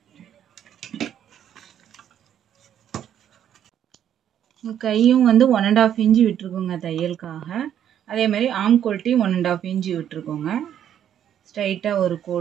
கையும் வந்து 1.5 இன்ச்சு விட்டுருக்கோங்க தையலுக்காக. அதே மாதிரி ஆம் கோல்ட்டி 1.5 இன்ச்சு விட்டுருக்கோங்க. ஸ்ட்ரைட்டாக ஒரு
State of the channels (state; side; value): quieter; left; 9.9 dB